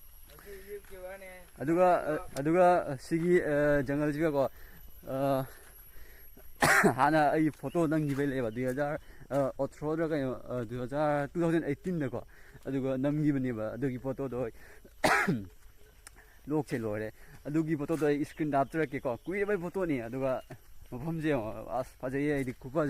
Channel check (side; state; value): both; identical; correlation 1.00